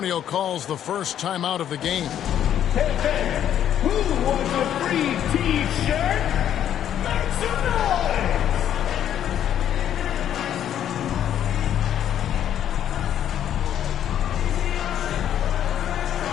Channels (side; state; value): right; quieter; 10.3 dB